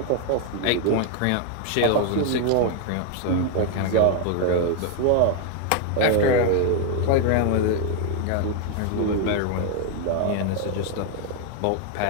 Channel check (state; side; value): different; both; correlation 0.01